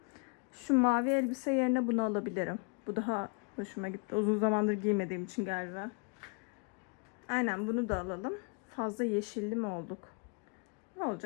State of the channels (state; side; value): quieter; right; 36.1 dB